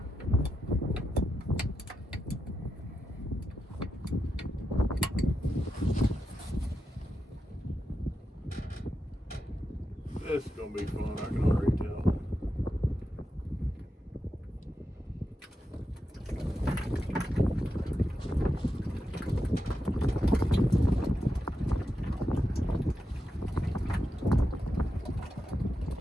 This is gonna be fun, I can already tell.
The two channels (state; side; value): normal; both; correlation 0.87